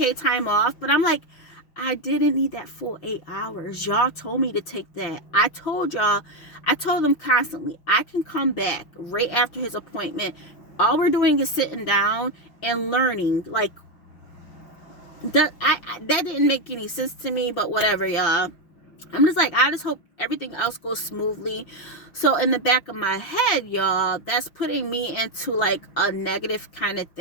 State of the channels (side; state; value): right; late; 5.9 ms